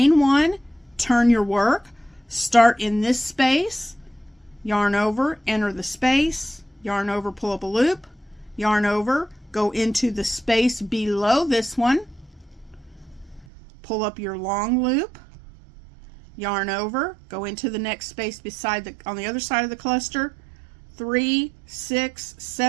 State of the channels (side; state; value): left; drops out; at 13.5 s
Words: 1, turn your work, start in this space, yarn over, enter the space, yarn over, pull up a loop, yarn over, go into the space below this one, pull up your long loop, yarn over, go into the next space beside on the other side of the cluster, 3, 6,